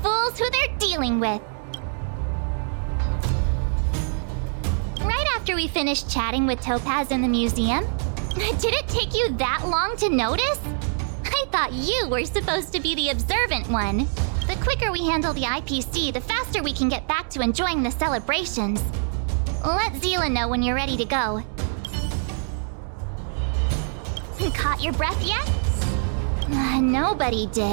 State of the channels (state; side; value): silent; left; digital silence